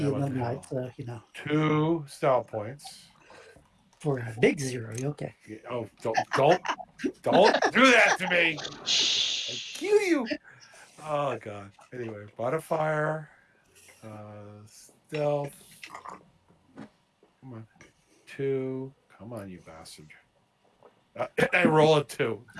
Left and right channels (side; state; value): both; identical; correlation 1.00